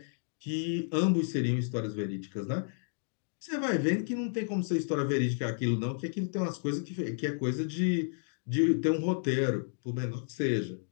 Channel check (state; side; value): silent; right; digital silence